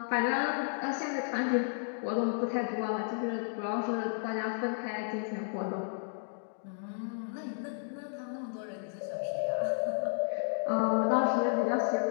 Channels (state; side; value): silent; right; digital silence